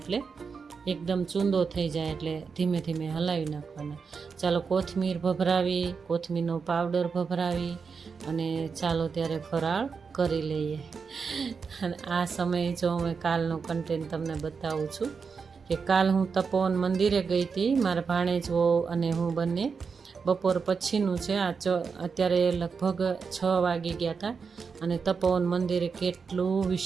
એકદમ ચૂંદો થઈ જાય, એટલે ધીમે ધીમે હલાવી નાખવાના. ચાલો કોથમીર ભભરાવી, કોથમીરનો પાવડર ભભરાવી અને ચાલો ત્યારે ફરાળ કરી લઈએ. અને આ સમયે જો હું કાલનો કન્ટેન્ટ તમને બતાવું છું કે કાલ હું તપોવન મંદિરે ગઈ હતી. મારા ભાણેજો અને હું બંને બપોર પછીનું છે. અત્યારે લગભગ 6 વાગી ગયા હતા. અને તપોવન મંદિરે કેટલું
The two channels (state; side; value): quieter; left; 5.4 dB